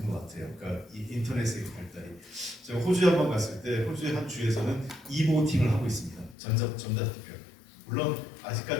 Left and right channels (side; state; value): right; drops out; at 6.4 s